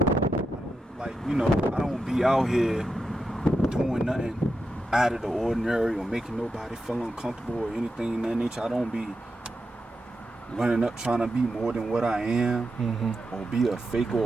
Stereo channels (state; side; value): normal; both; correlation 0.87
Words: like I don't be out here doing nothing out of the ordinary or making nobody feel uncomfortable or anything in that nature. I don't be running up trying to be more than what I am, or be a fake